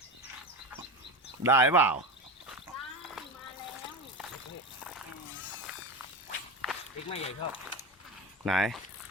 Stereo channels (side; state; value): both; normal; correlation 0.22